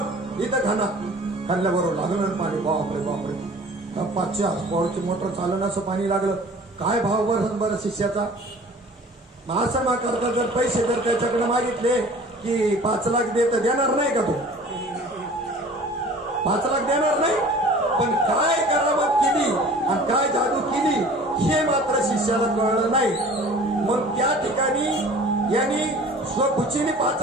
इथं खाल्ल्याबरोबर लागलं पाणी. बापरे बापरे, 500 हॉर्सपॉवरची मोटर चालणं असं पाणी लागलं. काय भाव बरं शिष्याचा. असं ना करता जर पैसे जर त्याच्याकडे मागितले की 5 लाख देत देणार नाही का? तू 5 लाख देणार नाही. पण काय करामत केली आणि काय जादू केली हे मात्र शिष्याला कळलं नाही. मग त्या ठिकाणी यांनी स्वखुशीने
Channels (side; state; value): both; normal; correlation 0.46